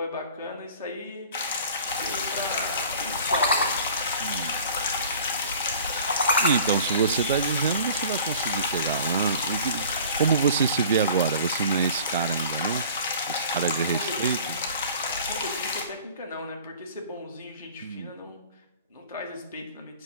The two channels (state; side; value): inverted; both; correlation -0.46